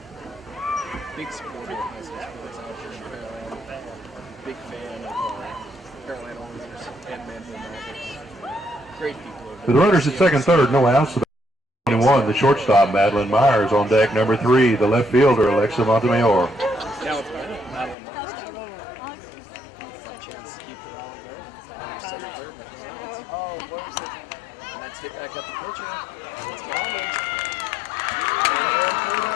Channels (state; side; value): drops out; right; at 17.9 s